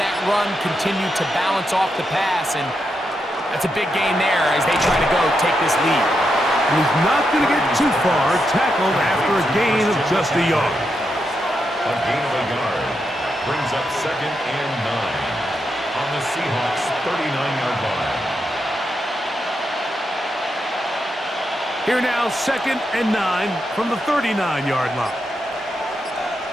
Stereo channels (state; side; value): normal; both; correlation 0.84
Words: run continue to balance off the pass? And that's a big gain there as they try to go take this lead. And he's not going to get too far, tackled after a gain of just a yard. A gain of a yard brings up 2nd and 9 on the Seahawks 39-yard line. Here now, 2nd and 9 from the 39-yard line.